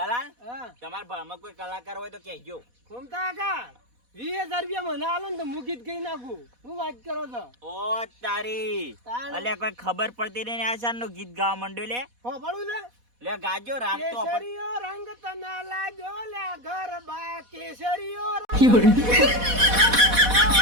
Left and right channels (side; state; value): left; late; 4.1 ms